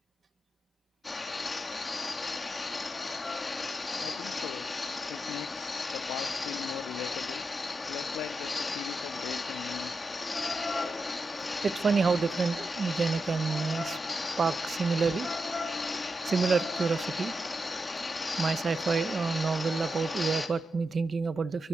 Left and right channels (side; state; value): both; normal; correlation 0.88